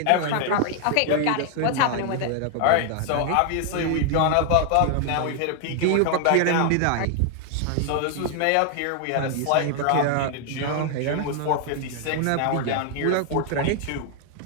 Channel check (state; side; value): different; both; correlation 0.00